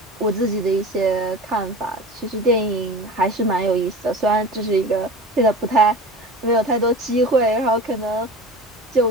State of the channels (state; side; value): normal; both; correlation 0.34